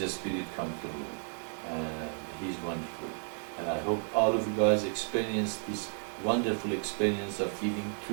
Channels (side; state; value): left; silent; 56 dB below the other